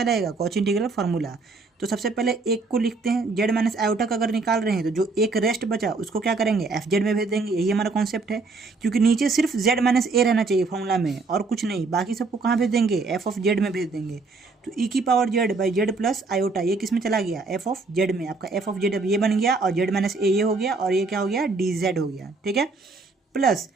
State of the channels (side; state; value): left; quieter; 3.9 dB